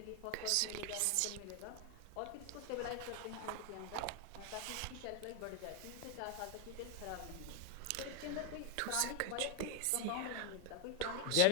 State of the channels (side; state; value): both; different; correlation 0.01